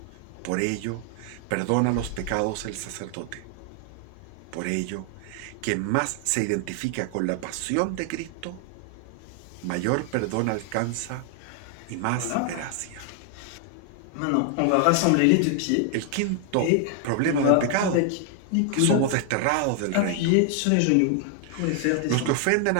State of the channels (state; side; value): different; both; correlation 0.00